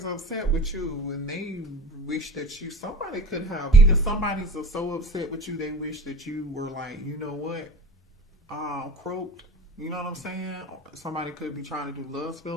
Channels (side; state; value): both; normal; correlation 0.35